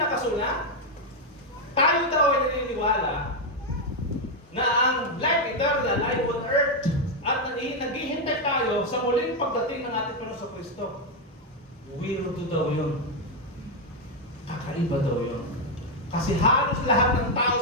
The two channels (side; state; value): both; normal; correlation 0.03